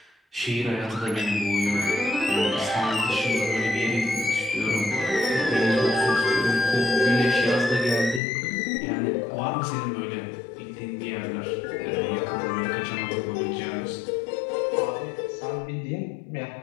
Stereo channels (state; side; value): drops out; right; at 8.2 s